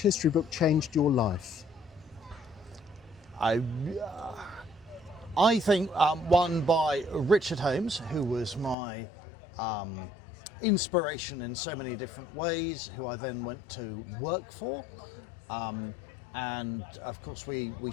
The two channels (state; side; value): drops out; right; at 8.8 s